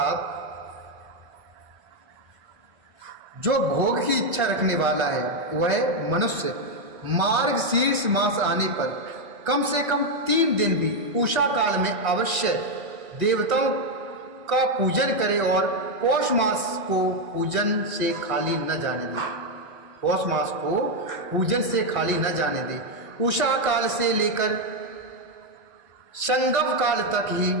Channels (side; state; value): left; late; 1.5 ms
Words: जो भोग की इच्छा रखने वाला है वह मनुष्य मार्गशीर्ष मास आने पर कम से कम 3 दिन भी उषा काल में अवश्य देवताओं का पूजन करे और पौष मास को पूजन से खाली न जाने दे। पौष मास को पूजन से खाली न जाने दे। उषा काल से लेकर संगम काल तक ही